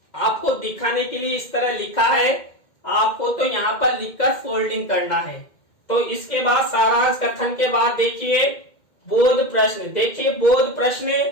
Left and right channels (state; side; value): late; right; 2.1 ms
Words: आपको दिखाने के लिए इस तरह लिखा है, आपको तो यहाँ पर लिखकर फोल्डिंग करना है। तो इसके बाद सारांश कथन के बाद देखिए बोध प्रश्न। देखिए, बोध प्रश्न